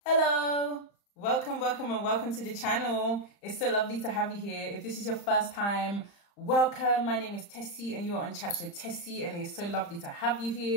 Hello, welcome to the channel. It's so lovely to have you here. If this is your first time, welcome. My name is Tessie and you are on Chats with Tessie, and it's so lovely to have you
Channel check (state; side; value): late; right; 35 ms